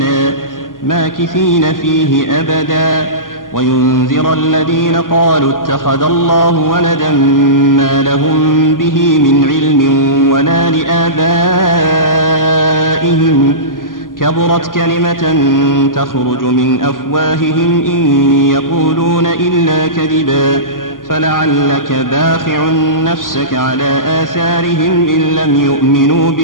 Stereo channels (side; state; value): right; late; 0.90 ms